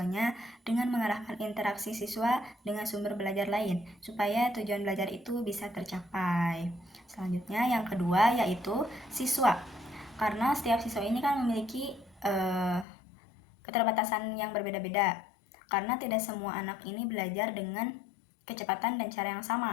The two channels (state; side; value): drops out; right; at 12.9 s